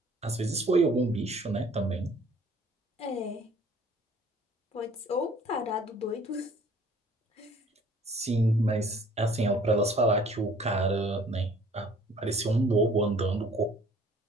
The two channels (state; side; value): normal; both; correlation 0.54